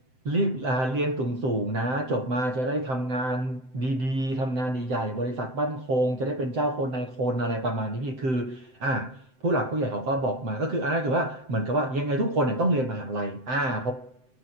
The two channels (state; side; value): late; left; 7.8 ms